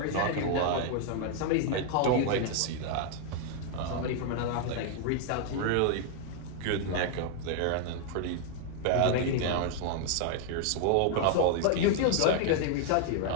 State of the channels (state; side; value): different; both; correlation 0.00